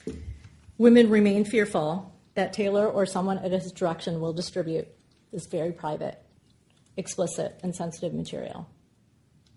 Women remain fearful that Taylor or someone at his direction will distribute this very private, explicit, and sensitive material.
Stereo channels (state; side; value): identical; both; correlation 1.00